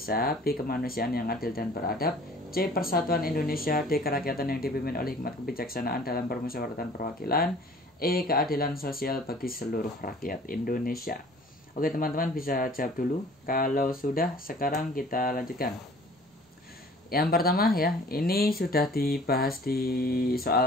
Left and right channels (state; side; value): normal; both; correlation 0.50